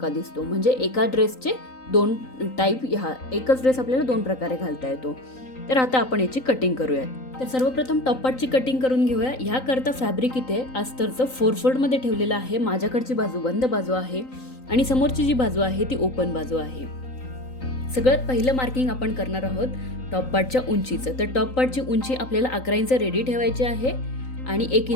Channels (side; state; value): right; late; 3.9 ms